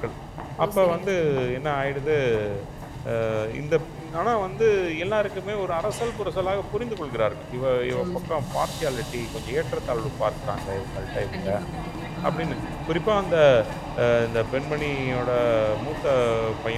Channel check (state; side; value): identical; both; correlation 1.00